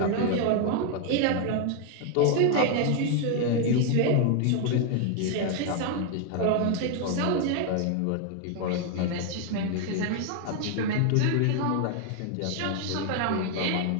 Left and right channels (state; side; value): different; both; correlation 0.00